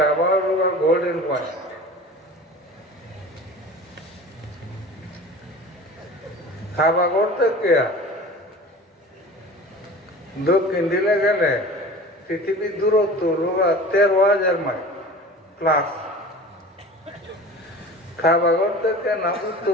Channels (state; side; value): normal; both; correlation 0.38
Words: গোল্ডেন পয়েন্ট। খাবার করতে কে দক্ষিণ দিলে গেলে পৃথিবীর দূরত্ব 13,000 মাইল প্লাস। খাবাগর থেকে না